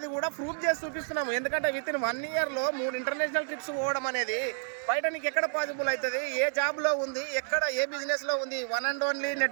కూడా ప్రూఫ్ చేసి చూపిస్తున్నాము. ఎందుకంటే విత్ ఇన్ 1 ఇయర్లో 3 ఇంటర్నేషనల్ ట్రిప్స్ పోవడం అనేది బయట నీకు ఎక్కడ పాసిబుల్ అవుతుంది? ఏ జాబ్లో ఉంది, ఎక్కడ ఏ బిజినెస్లో ఉంది? One and only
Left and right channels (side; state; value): left; silent; 58 dB below the other